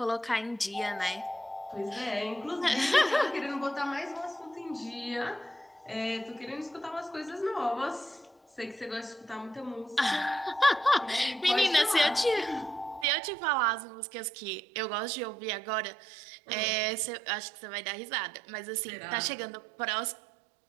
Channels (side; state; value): left; drops out; at 13.1 s